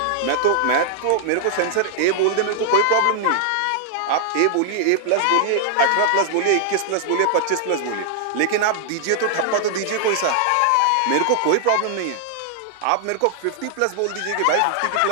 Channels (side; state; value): both; different; correlation -0.01